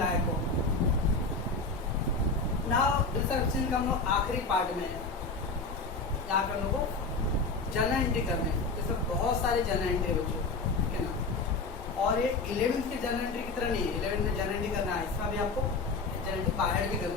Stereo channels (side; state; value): right; quieter; 3.9 dB